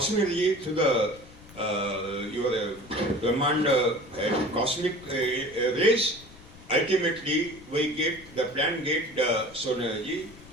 energy to the your Brahmanda cosmic rays, ultimately the plant get the solar energy,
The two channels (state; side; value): noise; left; rumble, 21 dB below the sound